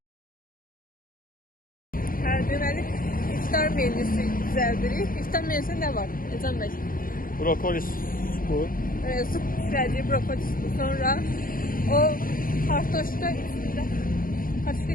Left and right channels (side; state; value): right; late; 0.41 ms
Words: Deməli, iftar menüsü düzəldirik. İftar menüsü nə var? Ecem bəy. Brokoli supu. Su pişirəcək, brokoli supu. Sonra o kartoşka